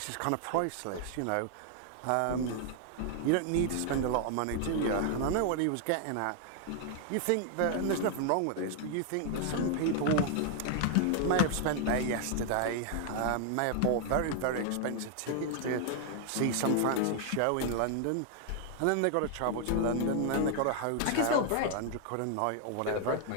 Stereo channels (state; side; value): different; both; correlation 0.00